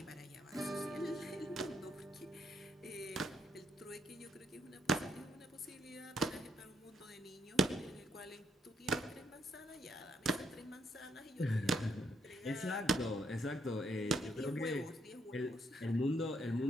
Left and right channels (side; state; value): both; normal; correlation 0.73